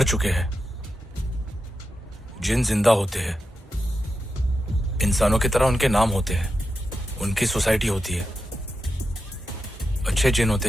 चुके हैं। जिन जिंदा होते हैं, इंसानों की तरह उनके नाम होते हैं, उनकी सोसाइटी होती है। अच्छे जिन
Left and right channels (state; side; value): normal; both; correlation 0.89